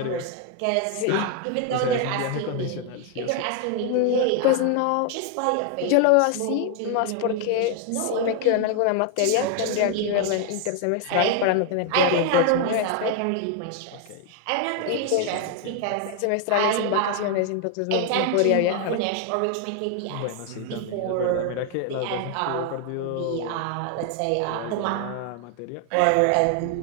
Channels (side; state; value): both; different; correlation 0.00